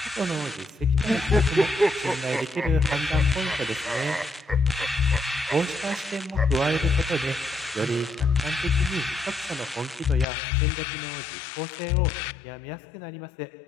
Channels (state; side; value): drops out; right; at 10.2 s